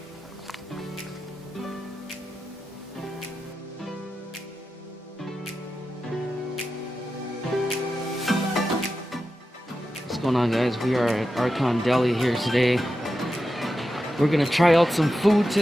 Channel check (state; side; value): normal; both; correlation 0.90